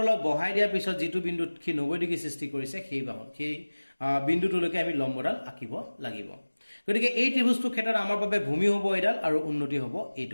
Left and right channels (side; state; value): both; inverted; correlation -1.00